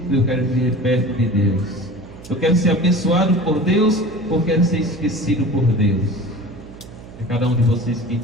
eu quero viver perto de Deus? Eu quero ser abençoado por Deus ou quero ser esquecido por Deus? É cada um de vocês que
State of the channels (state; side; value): noise; right; hum, 17 dB below the sound